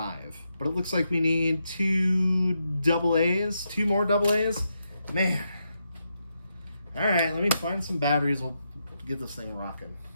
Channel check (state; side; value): inverted; both; correlation -0.83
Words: But it looks like we need two more double A's. Man. All right, let me find some batteries. We'll get this thing rocking.